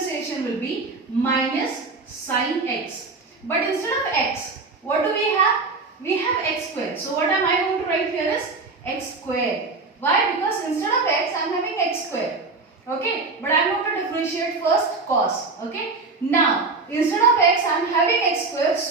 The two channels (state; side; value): quieter; left; 3.9 dB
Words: will be minus sin x. But instead of x, what do we have? We have x square. So what am I going to write here is x square. Why? Because instead of x, I am having x square. Okay, but I am going to differentiate first cos. Okay, now instead of x, I am having x square,